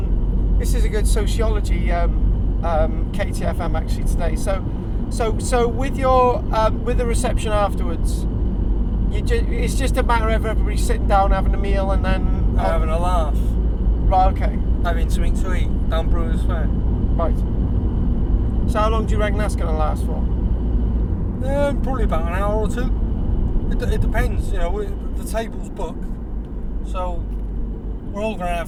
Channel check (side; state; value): both; identical; correlation 1.00